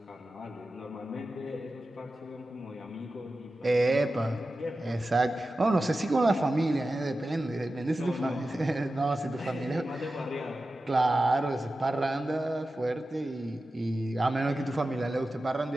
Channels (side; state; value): both; normal; correlation 0.93